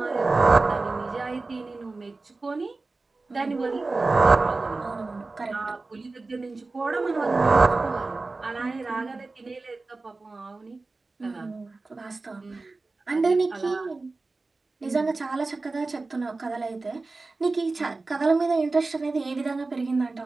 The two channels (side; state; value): left; quieter; 3.5 dB